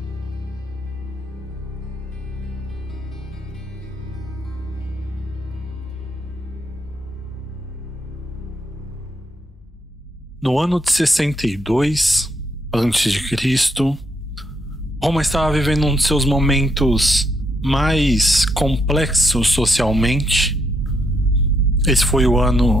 No ano de 62 a.C., Roma estava vivendo um de seus momentos mais complexos socialmente. Esse foi o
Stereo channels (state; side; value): normal; both; correlation 0.76